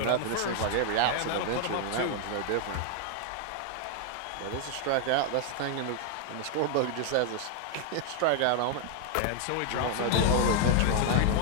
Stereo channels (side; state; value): both; different; correlation 0.00